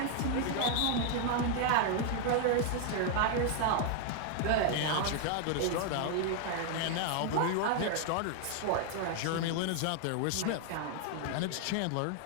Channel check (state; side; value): different; both; correlation 0.00